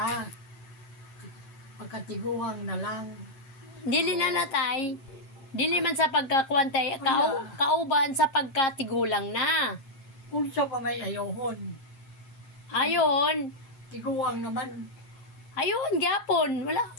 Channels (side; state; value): right; late; 8.8 ms